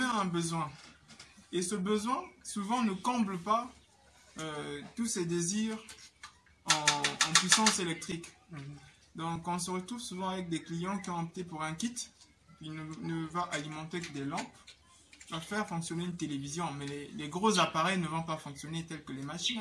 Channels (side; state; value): both; identical; correlation 1.00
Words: un besoin. Et ce besoin, souvent, ne comble pas tous ses désirs en puissance électrique. Donc, on se retrouve souvent avec des clients qui ont opté pour un kit. Il ne va alimenter que des lampes. Va faire fonctionner une télévision. Mais les gros appareils ne vont pas fonctionner tels que les machines